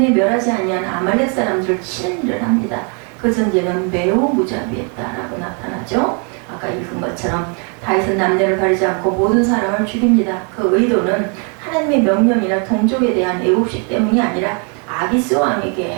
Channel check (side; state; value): left; quieter; 37.7 dB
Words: 멸하지 아니한 아말렉 사람들을 치는 일을 합니다. 그 전쟁은 매우 무자비했다라고 나타나죠. 아까 읽은 것처럼 다윗은 남녀를 가리지 않고 모든 사람을 죽입니다. 그 의도는 하나님의 명령이나 동족에 대한 애국심 때문이 아니라 아기스